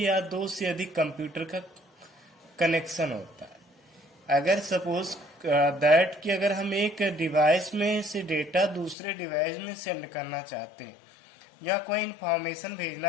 दो से अधिक कंप्यूटर का कनेक्शन होता है। अगर सपोज दैट कि अगर हम एक डिवाइस में से डेटा दूसरे डिवाइस में सेंड करना चाहते हैं या कोई इंफॉर्मेशन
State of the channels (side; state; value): right; drops out; at 9.0 s